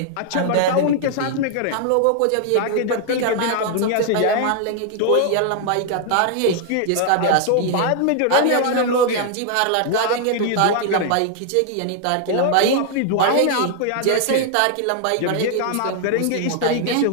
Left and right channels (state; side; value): different; both; correlation 0.00